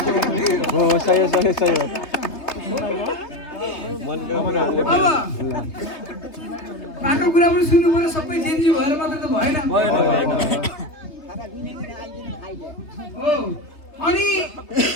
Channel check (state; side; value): late; right; 3.4 ms